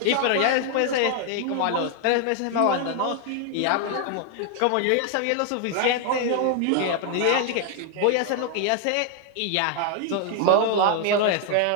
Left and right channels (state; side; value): different; both; correlation 0.00